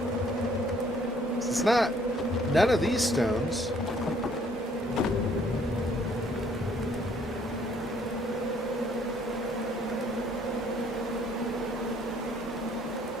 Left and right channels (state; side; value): normal; both; correlation 0.62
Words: It's not none of these stones.